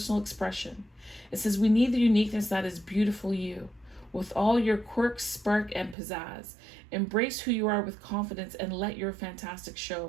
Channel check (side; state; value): left; drops out; at 6.0 s